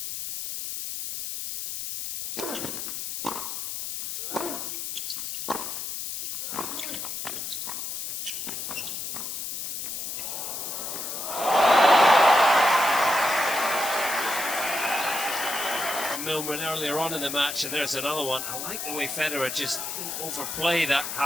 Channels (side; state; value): left; noise; hiss, 5 dB below the sound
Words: Milman earlier on in the match, and there's another one. I like the way Federer just didn't overplay that